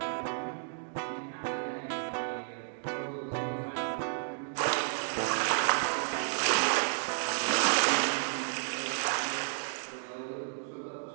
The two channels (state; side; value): silent; left; digital silence